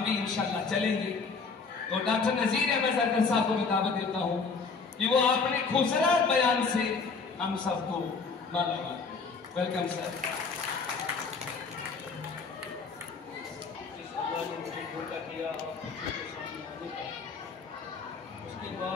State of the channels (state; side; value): quieter; right; 4.8 dB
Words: भी इंशाल्लाह चलेंगे। तो डॉक्टर नजीर अहमद जरगर साहब को मैं दावत देता हूं कि वो अपने खूबसूरत बयान से हम सबको मालामाल करें। Welcome sir. जिस अल्लाह ने मुझे मौका दिया आप बच्चों के सामने आने का, उसके